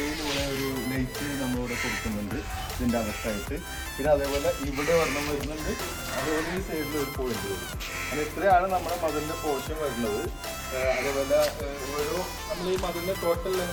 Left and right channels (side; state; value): both; identical; correlation 1.00